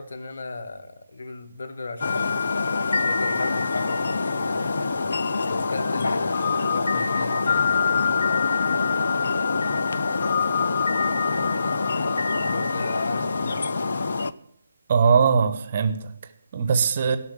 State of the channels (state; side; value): inverted; both; correlation -0.82